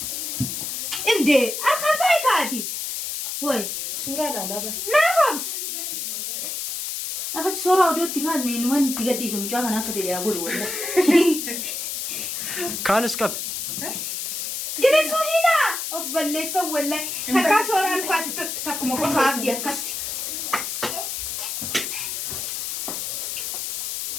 inde akkam ta'e kaati woy suuraa laalaa naafams أخذ صورة ودوتي كان من وين تقدي اسم جاك أنا أخذ اللي أقوله ولا كان سكب جلسوا هنا أفضل ليس ولا هكا صورة أنا خلاص تكمل قصة أبدي أكستي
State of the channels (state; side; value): noise; left; hiss, 4 dB below the sound